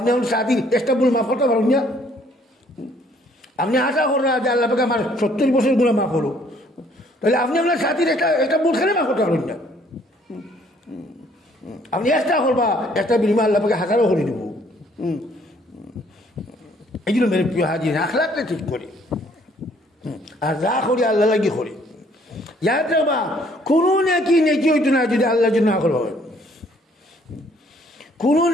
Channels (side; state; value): both; normal; correlation 0.62